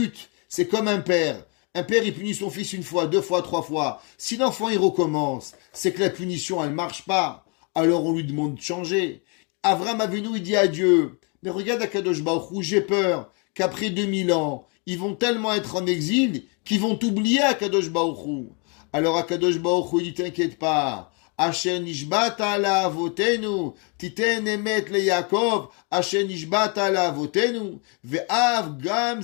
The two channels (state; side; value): quieter; right; 34.8 dB